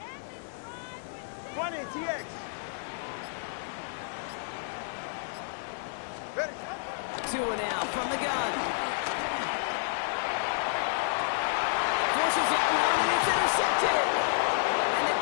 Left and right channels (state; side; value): silent; right; 58 dB below the other